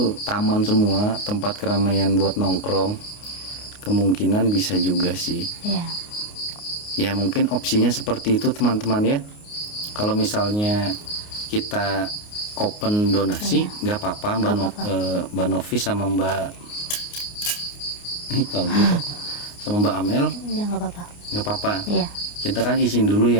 taman semua, tempat keramaian buat nongkrong. Kemungkinan bisa juga sih. Iya. Ya mungkin opsinya seperti itu teman-teman ya. Kalau misalnya kita open donasi nggak apa-apa Mbak Novi sama Mbak kalau gitu sama Mbak Amel Ya nggak apa-apa. nggak apa-apa. Iya. Kita kan izin dulu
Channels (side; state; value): right; late; 29 ms